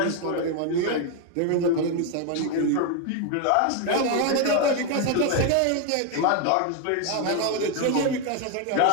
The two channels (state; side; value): different; both; correlation 0.01